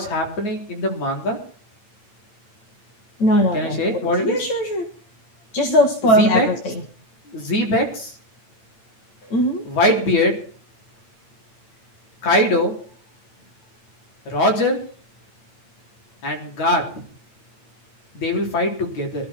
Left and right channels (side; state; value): right; late; 8.9 ms